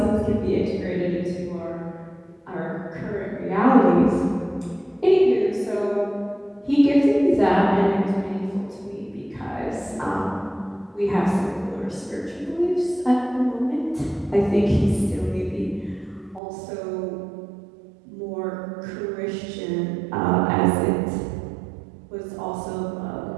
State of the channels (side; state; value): left; drops out; at 16.4 s